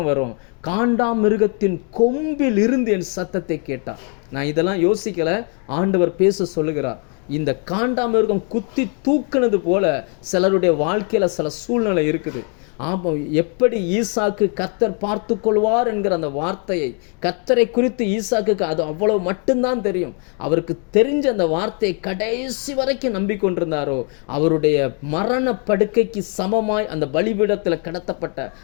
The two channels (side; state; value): right; quieter; 39.0 dB